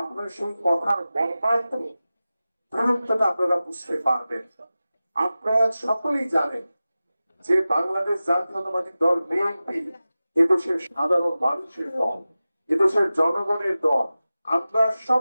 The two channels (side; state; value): both; inverted; correlation -0.96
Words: আপনার সেই কথার মর্মার্থ গুরুত্বটা আপনারা বুঝতে পারবেন। আপনারা সকলেই জানেন যে বাংলাদেশ জাতীয়তাবাদী দল বিএনপি এদেশের সাধারণ মানুষের দল, এদেশের জনগণের দল। আমরা সব